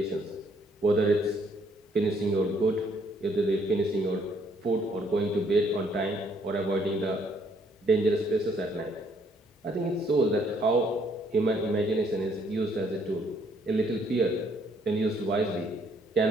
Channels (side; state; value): both; normal; correlation 0.67